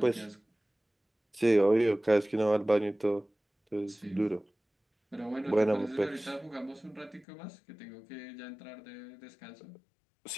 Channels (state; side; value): drops out; right; at 7.2 s